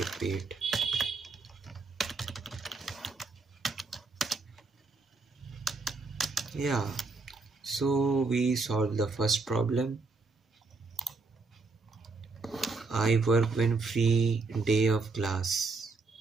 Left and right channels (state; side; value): quieter; left; 3.9 dB